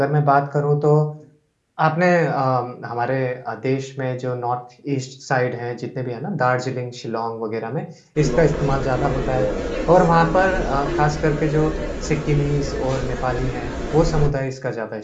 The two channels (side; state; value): both; identical; correlation 1.00